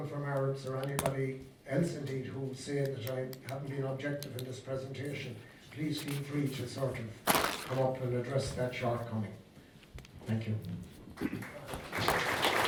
from Arabs or anybody else indeed who say that I haven't been objective in this presentation, please feel free to sort of come up and address that shortcoming. Thank you.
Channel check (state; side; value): identical; both; correlation 1.00